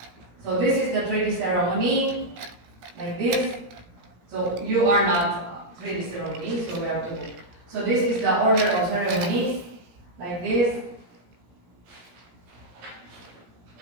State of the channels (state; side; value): late; left; 17 ms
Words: So this is the 3D ceremony, like this. So you are not 3D ceremony, so we have to. So this is the order of ceremonies, like this.